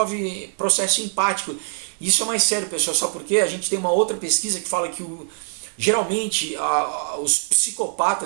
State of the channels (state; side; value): silent; left; 62 dB below the other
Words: processo empático. Isso é mais sério, pessoal, só porque a gente tem uma outra pesquisa que fala que geralmente os